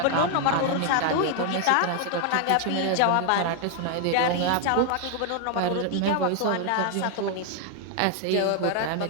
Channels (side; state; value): both; different; correlation 0.00